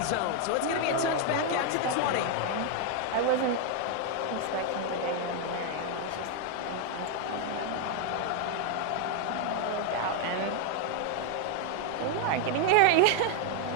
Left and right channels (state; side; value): different; both; correlation 0.00